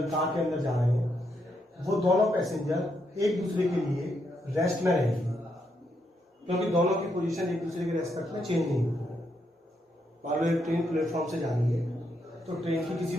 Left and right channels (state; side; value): normal; both; correlation 0.79